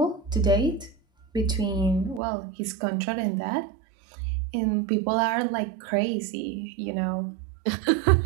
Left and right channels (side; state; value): left; drops out; at 2.2 s